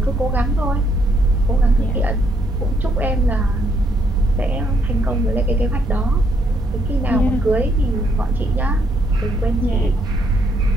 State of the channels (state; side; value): normal; both; correlation 0.72